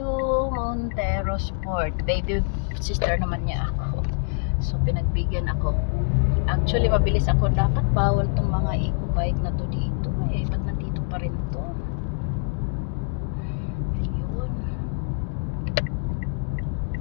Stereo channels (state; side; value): silent; right; 62 dB below the other